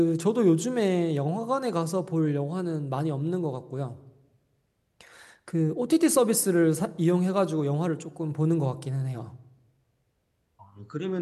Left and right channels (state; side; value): identical; both; correlation 1.00